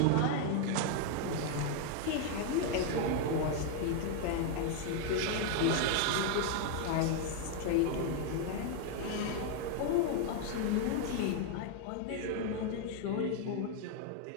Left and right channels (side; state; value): both; different; correlation 0.00